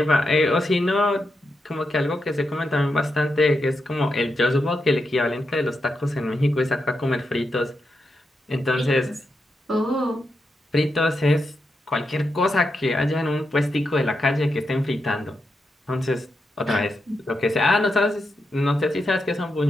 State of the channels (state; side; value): normal; both; correlation 0.85